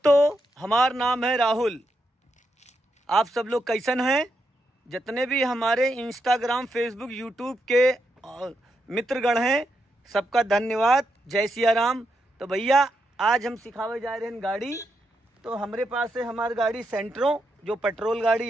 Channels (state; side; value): normal; both; correlation 0.83